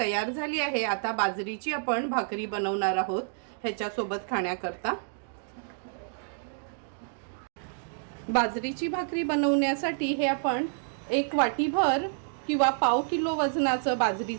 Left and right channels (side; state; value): left; silent; digital silence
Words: झाली आहे. आता बाजरीची आपण भाकरी बनवणार आहोत ह्याच्यासोबत खाण्याकरता. बाजरीची भाकरी बनवण्यासाठी हे आपण 1 वाटीभर किंवा पाव किलो वजनाचं